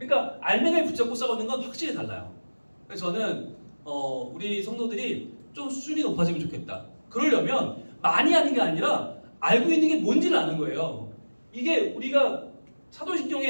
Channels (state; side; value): inverted; both; correlation -1.00